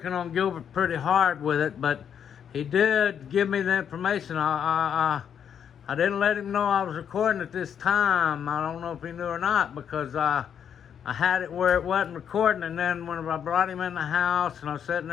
on Gilbert pretty hard with it, but he did give me the information. I didn't let him know I was recording at this time. I don't know if he knew or not, because I had it where it wasn't recording, and then when I brought him in the house and I was sitting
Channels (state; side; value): quieter; right; 8.3 dB